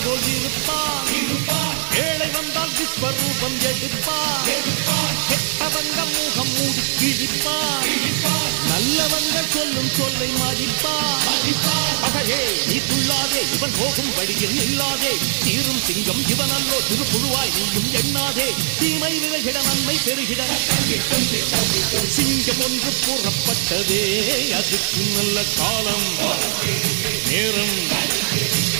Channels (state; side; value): silent; left; digital silence